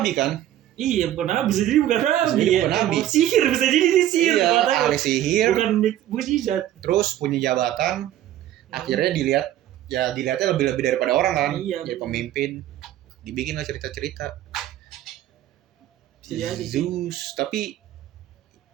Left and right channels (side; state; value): left; quieter; 12.7 dB